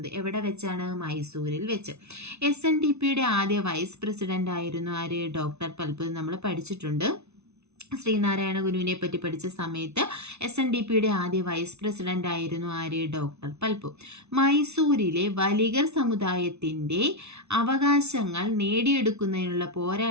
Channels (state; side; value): late; left; 0.81 ms